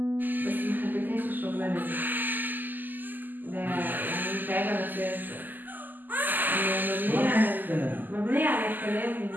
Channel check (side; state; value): left; late; 0.087 ms